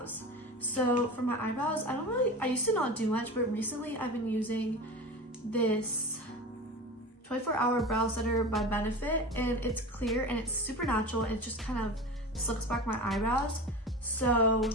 So for my eyebrows, I used to not do much, but recently I've been using this 24-hour brow setter by Benefit, and it's clear and it's super natural, and it just kind of slicks back my eyebrows. So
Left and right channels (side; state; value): both; normal; correlation 0.30